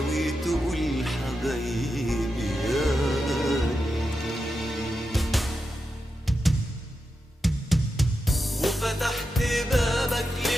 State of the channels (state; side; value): normal; both; correlation 0.88